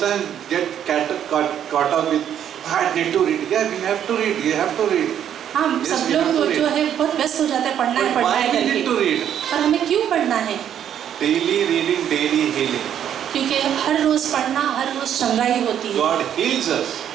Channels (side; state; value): left; quieter; 9.7 dB